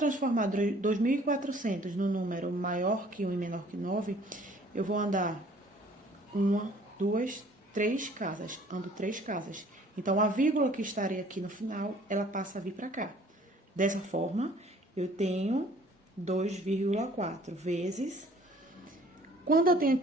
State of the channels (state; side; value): normal; both; correlation 0.55